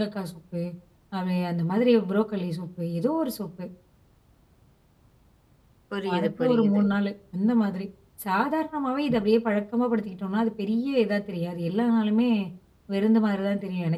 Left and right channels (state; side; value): identical; both; correlation 1.00